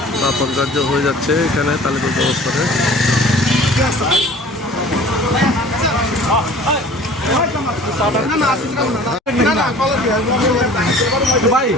দাফন কার্য হয়ে যাচ্ছে এখানে তালিপুর অবস্থানে। ভাই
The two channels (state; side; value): normal; both; correlation 0.47